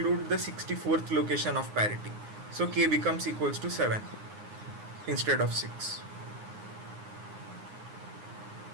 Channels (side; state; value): left; late; 9.7 ms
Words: the 64th location of parity. So k becomes equals to 7 instead of 6.